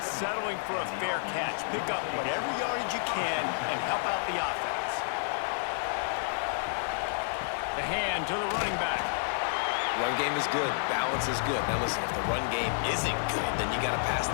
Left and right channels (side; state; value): right; silent; 58 dB below the other